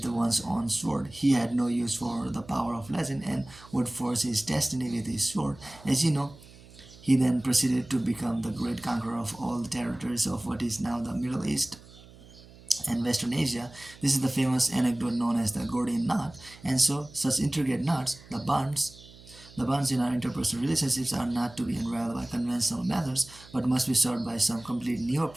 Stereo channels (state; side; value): noise; right; hum, 21 dB below the sound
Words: one's own sword. He had no use for the power of legend and would force his destiny with his sword. As you know, he then proceeded to become the great conqueror of all the territories of what is now the Middle East and Western Asia. This is the famous anecdote known as the Gordian knot. And so, such intricate knots, the bonds in our interpersonal relationships are not to be unraveled by conventional methods, but must be solved by some complete new